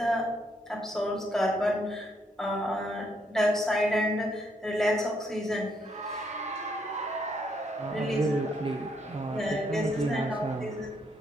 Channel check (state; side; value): normal; both; correlation 0.73